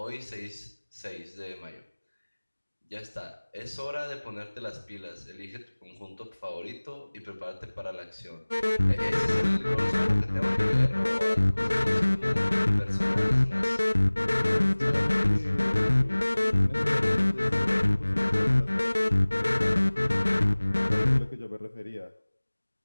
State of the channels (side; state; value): both; inverted; correlation -1.00